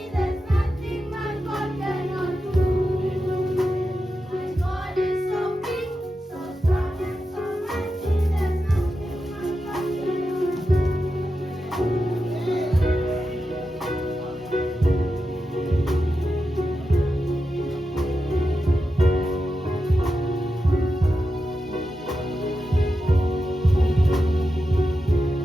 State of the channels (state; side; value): normal; both; correlation 0.90